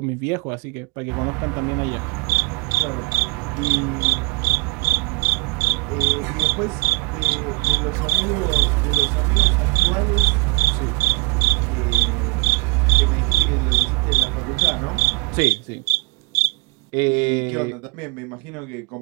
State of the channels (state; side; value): quieter; left; 28.9 dB